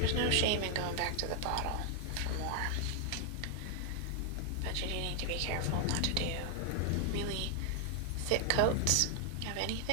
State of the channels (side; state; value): both; different; correlation 0.00